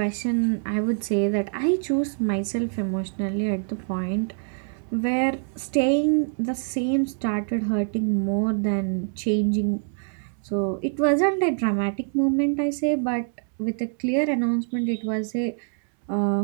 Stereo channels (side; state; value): left; silent; 57 dB below the other